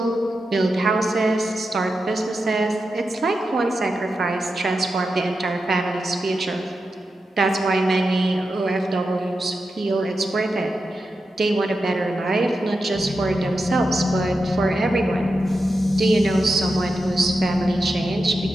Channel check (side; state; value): both; normal; correlation 0.89